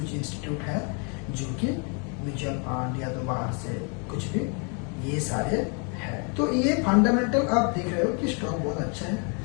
इंस्टीट्यूट है जो कि म्यूचुअल फंड या तो बाहर से कुछ भी, ये सारे है। तो ये फंडामेंटल आप देख रहे हो कि स्टॉक बहुत अच्छा है।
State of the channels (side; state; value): right; quieter; 37.2 dB